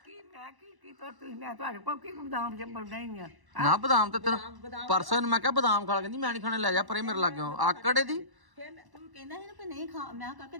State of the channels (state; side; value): late; left; 1.1 ms